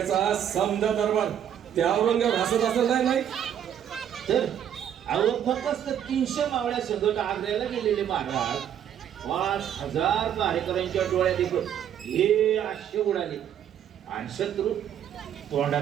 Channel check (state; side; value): quieter; left; 9.6 dB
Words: समजा दरबार त्या औरंगाबाद हसत असं नाही तर फक्त 300 मावळ्या संगत आग्र्याला गेलेले महाराज 5000 कार्यकर्त्यांच्या डोळ्यात देखत हे आश्चर्य उडाले आणि शत्रू